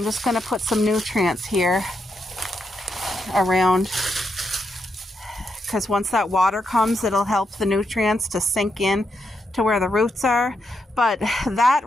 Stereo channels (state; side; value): normal; both; correlation 0.82